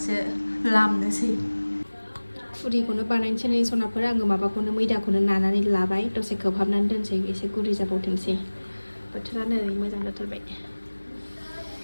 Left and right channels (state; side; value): inverted; both; correlation -1.00